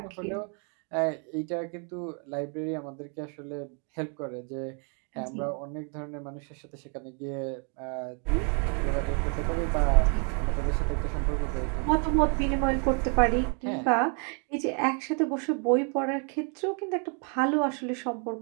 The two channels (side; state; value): left; quieter; 39.1 dB